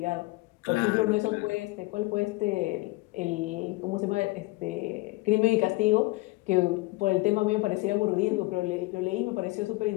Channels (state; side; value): quieter; right; 22.5 dB